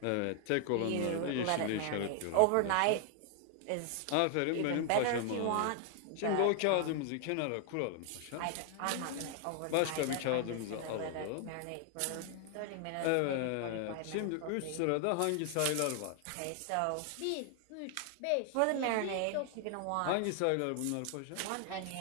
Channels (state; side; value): different; both; correlation 0.00